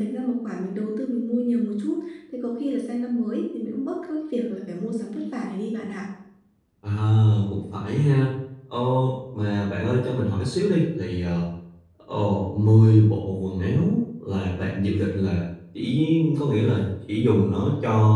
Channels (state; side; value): identical; both; correlation 1.00